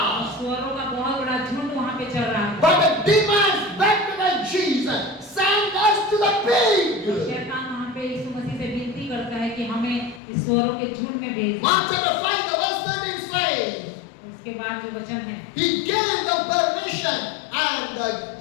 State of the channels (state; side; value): drops out; right; at 10.2 s